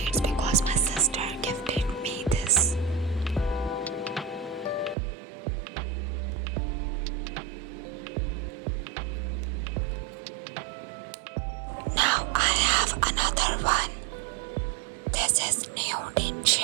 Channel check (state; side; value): drops out; left; at 5.0 s